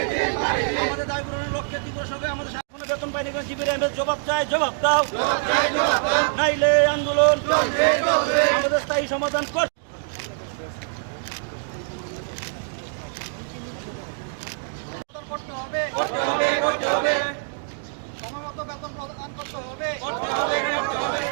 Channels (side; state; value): left; silent; digital silence